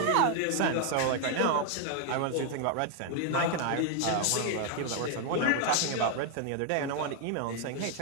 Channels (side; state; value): both; different; correlation 0.01